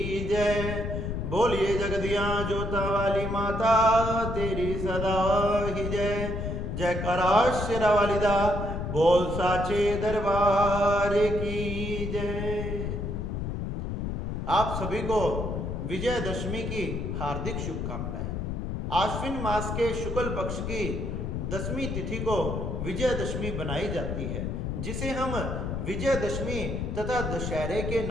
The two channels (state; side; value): noise; left; rumble, 3 dB below the sound